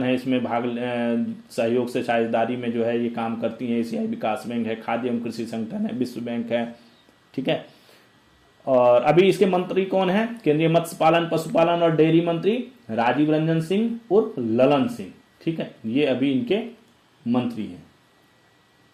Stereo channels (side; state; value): both; identical; correlation 1.00